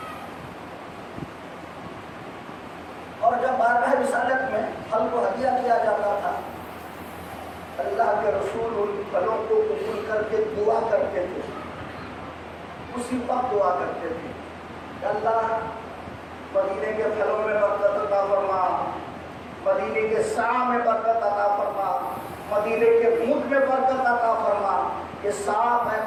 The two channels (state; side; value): identical; both; correlation 1.00